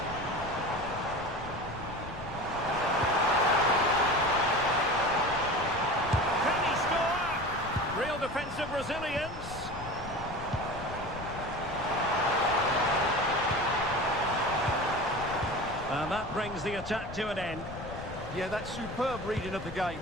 Can he score? Real defensive resilience. And that brings the attack to an end. Yeah, that's superb reading of the game.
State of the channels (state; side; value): noise; left; rumble, 13 dB below the sound